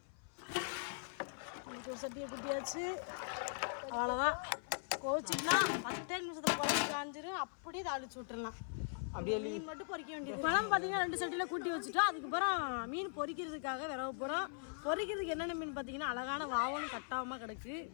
ஒரு சட்டியை குட்டியாச்சு. அவ்வளோதான். கோச்சிக்கலாம் 10 நிமிஷத்தில் குழம்பு காஞ்சிரும். அப்படியே தாளிச்சு விட்டுடலாம். அப்படியே மீன் மட்டும் பொரிக்க வேண்டியது. குழம்பு பார்த்தீங்கன்னா 2 சட்டியில் கூட்டி வச்சுட்டோம். அதுக்கப்புறம் மீன் பொரிக்கிறதுக்காக விரவ போகிறோம். பொரிக்கிறதுக்கு என்னென்ன மீன் பார்த்தீங்கன்னா அழகான வாவலும் கட்டாமல் கிடக்கு.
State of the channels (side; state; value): right; silent; 51 dB below the other